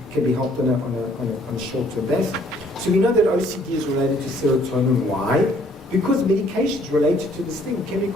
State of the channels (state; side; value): normal; both; correlation 0.62